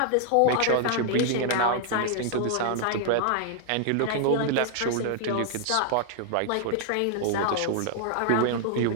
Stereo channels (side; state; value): both; different; correlation 0.00